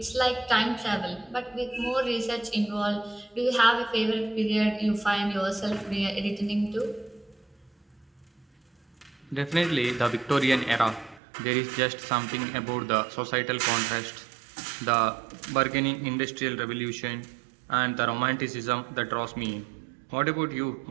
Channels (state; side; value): drops out; left; at 11.2 s